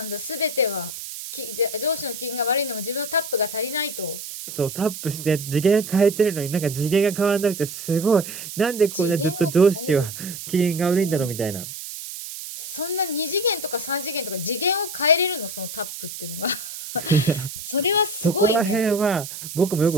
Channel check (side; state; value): right; noise; hiss, 10 dB below the sound